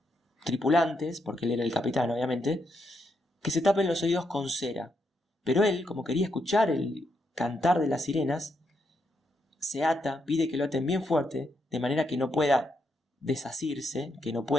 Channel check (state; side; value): normal; both; correlation 0.80